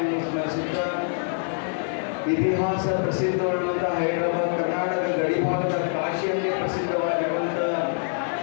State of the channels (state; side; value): silent; right; 62 dB below the other